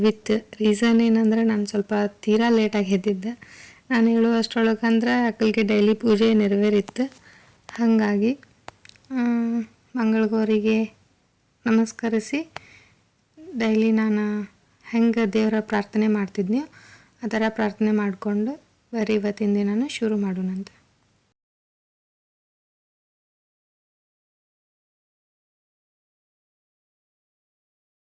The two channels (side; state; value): both; identical; correlation 1.00